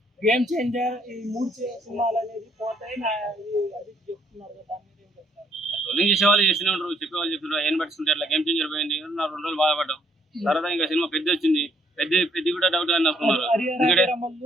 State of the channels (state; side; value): normal; both; correlation 0.67